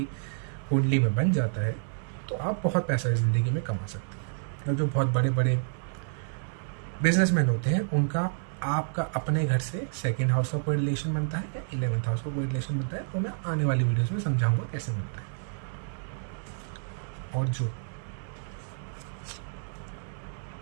कुंडली में बन जाता है, तो आप बहुत पैसा ज़िंदगी में कमा सकते हैं। और जो बहुत बड़े बड़े बिजनेसमैन होते हैं, उनका आपका अपने घर से 2nd हाउस का कोई रिलेशन बनता है या 11th हाउस का कोई रिलेशन बनता है, तो मैं आने वाली वीडियोस में समझाऊंगा कैसे बनता है। और जो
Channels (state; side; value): silent; left; digital silence